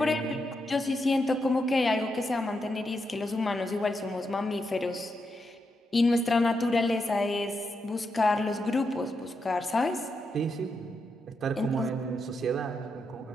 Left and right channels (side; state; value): both; normal; correlation 0.84